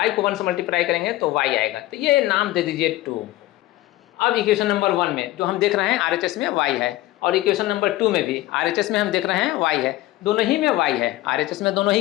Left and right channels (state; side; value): quieter; right; 16.6 dB